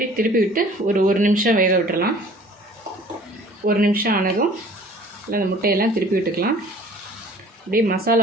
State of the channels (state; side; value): normal; both; correlation 0.50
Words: திருப்பி விட்டு ஒரு நிமிஷம் வேக விட்டுடலாம். 1 நிமிஷம் ஆனதும் இல்லை அந்த முட்டையெல்லாம் திருப்பி விட்டுக்கலாம். அப்படியே